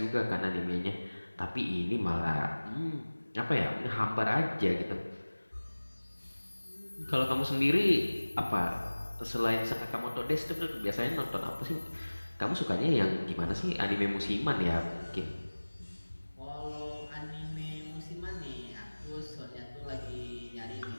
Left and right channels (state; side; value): inverted; both; correlation -1.00